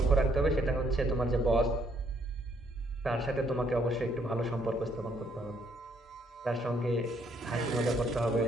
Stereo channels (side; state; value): both; normal; correlation 0.69